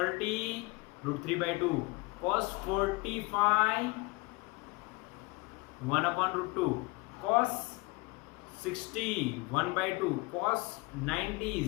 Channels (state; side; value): quieter; right; 24.7 dB